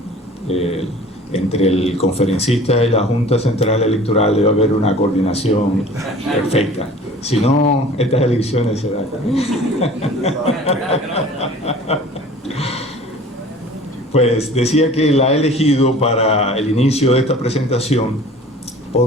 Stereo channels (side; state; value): both; normal; correlation 0.45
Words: Entre el conferencista y la Junta Central Electoral debe haber una coordinación perfecta. Si no, estas elecciones se dan. Pues decía que la he elegido para el inicio de esta presentación